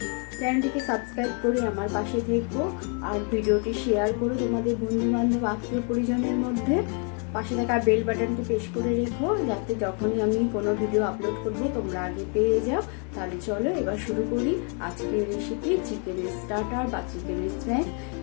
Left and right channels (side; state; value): right; quieter; 39.0 dB